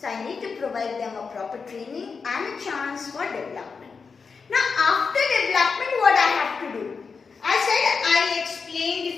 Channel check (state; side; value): quieter; right; 5.2 dB